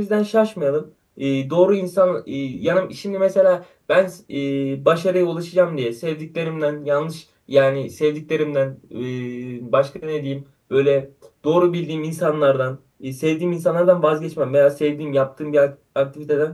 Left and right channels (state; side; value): identical; both; correlation 1.00